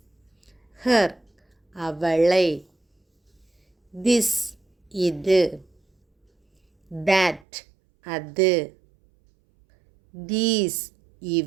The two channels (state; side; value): drops out; left; at 7.4 s